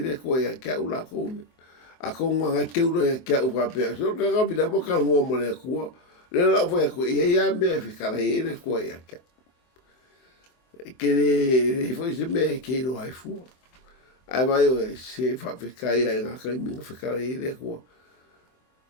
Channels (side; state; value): right; late; 23 ms